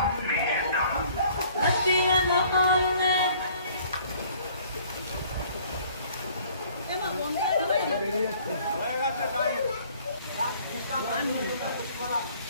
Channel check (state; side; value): inverted; both; correlation -0.57